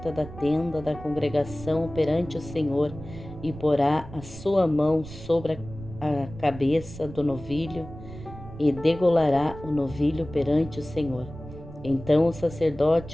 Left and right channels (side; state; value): right; noise; rumble, 14 dB below the sound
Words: da tenda da congregação perante o Senhor, e porá a sua mão sobre a cabeça do novilho, e degolará o novilho perante o Senhor. Então o